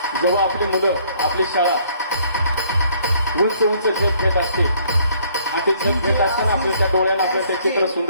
जेव्हा आपली मुलं आपली शाळा उंच उंच खेळ खेळत असते ते जग घेत असताना आपल्या डोळ्यानं आपल्याला ते चित्र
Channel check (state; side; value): inverted; both; correlation -0.63